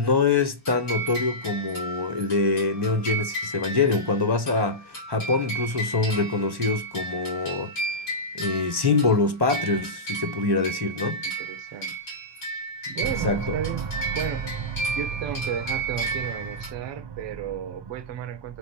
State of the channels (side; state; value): left; late; 1.1 ms